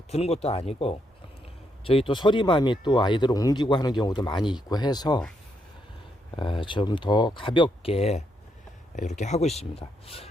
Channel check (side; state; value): both; normal; correlation 0.78